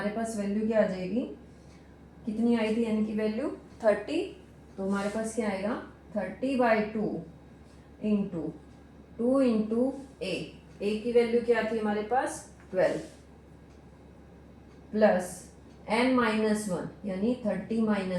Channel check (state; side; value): identical; both; correlation 1.00